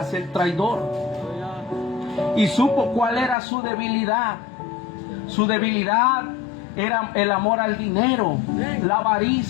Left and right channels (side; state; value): right; drops out; at 3.4 s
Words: el traidor, y supo cuál era su debilidad. Su debilidad era el amor al dinero, la